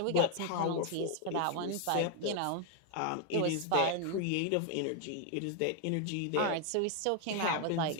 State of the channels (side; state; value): both; different; correlation 0.00